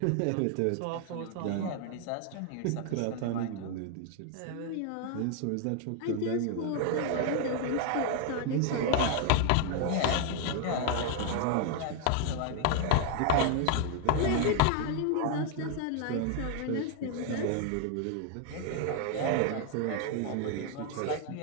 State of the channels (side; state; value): both; different; correlation 0.00